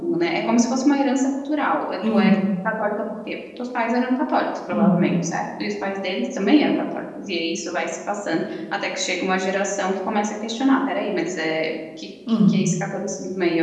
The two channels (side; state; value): both; identical; correlation 1.00